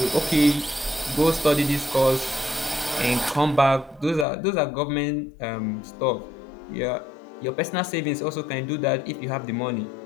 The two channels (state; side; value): drops out; right; at 4.2 s